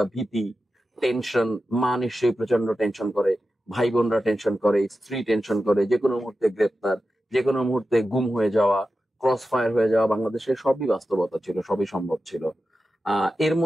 ভীতি, টেনশন। মা নিশ্চয়ই প্রচন্ড টেনশন করে, ভাই বোনরা টেনশন করে, স্ত্রী টেনশন করে, যে কোনো মুহূর্তে গ্রেপ্তার, যে কোনো মুহূর্তে গুম হয়ে যাওয়া, ক্রস ফায়ার হয়ে যাওয়া, বাংলাদেশের সবই বাস্তবতা ছিল, সবই সম্ভব ছিল। এর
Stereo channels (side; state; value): both; normal; correlation 0.92